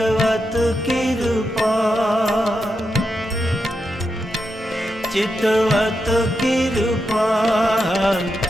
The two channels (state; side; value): normal; both; correlation 0.86